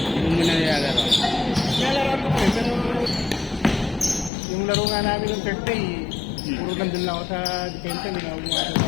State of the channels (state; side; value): drops out; right; at 4.3 s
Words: mo muna nilalaro. Nalaroan ko eh, pero yung laro nga namin ng Thursday, puro nandun lang ako sa defensa, hindi na ako gumagawa